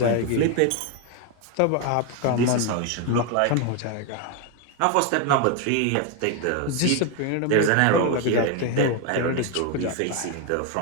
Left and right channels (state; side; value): different; both; correlation 0.01